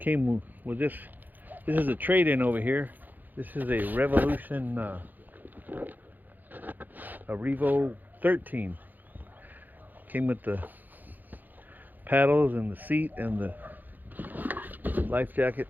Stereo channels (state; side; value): late; left; 0.085 ms